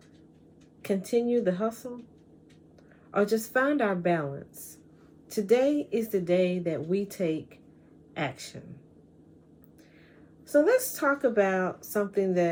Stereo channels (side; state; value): both; identical; correlation 1.00